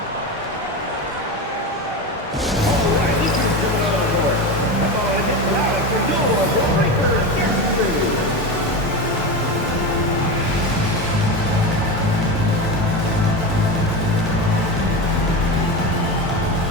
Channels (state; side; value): normal; both; correlation 0.21